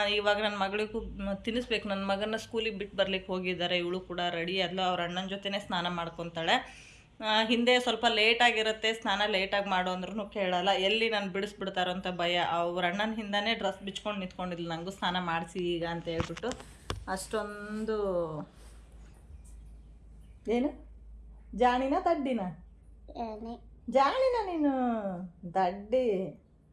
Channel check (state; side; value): identical; both; correlation 1.00